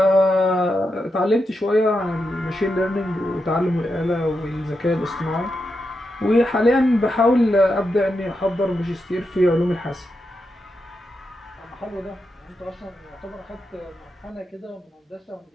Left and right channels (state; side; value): normal; both; correlation 0.86